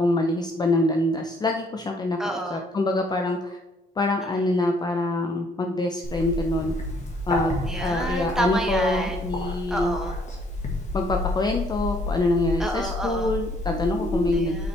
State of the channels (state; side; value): normal; both; correlation 0.64